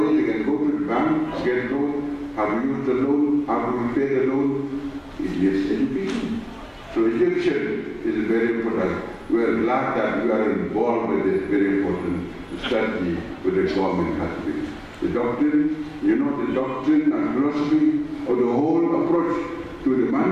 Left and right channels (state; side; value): identical; both; correlation 1.00